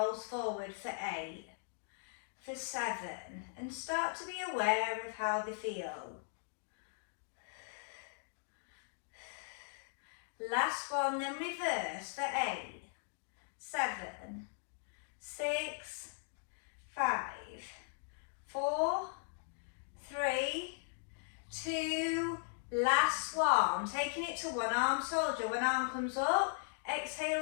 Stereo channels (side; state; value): right; silent; digital silence